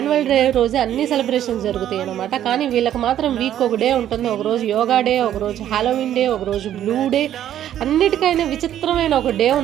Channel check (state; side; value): quieter; left; 11.2 dB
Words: డే రోజు అన్ని సెలబ్రేషన్స్ జరుగుతాయి అనమాట. కానీ వీళ్ళకి మాత్రం వీక్ ఒక డే ఉంటుంది. ఒకరోజు యోగా డే, ఒకరోజు హాలోవీన్ డే, ఒకరోజు బ్లూ డే, అన్నిటికైనా విచిత్రమైన ఒక డే